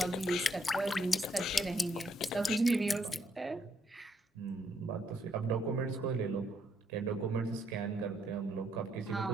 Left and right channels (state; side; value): normal; both; correlation 0.73